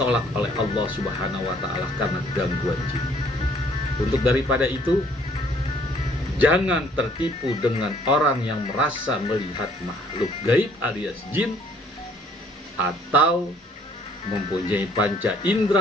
oleh Allah Subhanahu wa Ta'ala karena gangguan jin. Untuk daripada itu, jangan tertipu dengan orang yang merasa melihat makhluk gaib alias jin atau mempunyai panca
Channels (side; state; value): both; normal; correlation 0.61